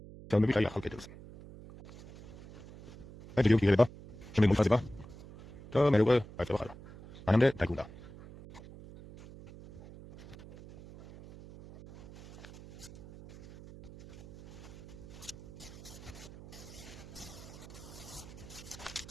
Chciałbym być jak Kettles. Będzie wielki ryba, czy my mój fazyba? To merugę, a to chala. A nam de tajkunda.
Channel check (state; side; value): noise; right; hum, 17 dB below the sound